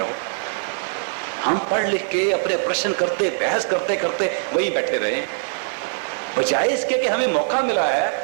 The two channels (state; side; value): silent; left; digital silence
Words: हम पढ़ लिख के अपने प्रश्न करते, बहस करते करते वही बैठे रहे, बजाय इसके कि हमें मौका मिला है